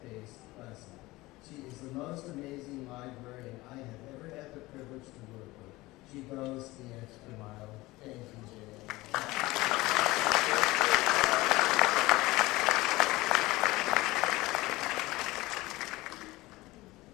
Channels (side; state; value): right; quieter; 19.9 dB